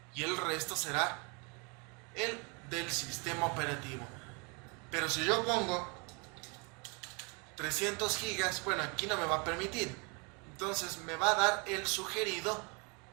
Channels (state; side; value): quieter; left; 32.1 dB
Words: y el resto será el del sistema operativo. Pero si yo pongo 300 gigas, bueno, aquí no me va a permitir. Entonces me va a dar el sugerido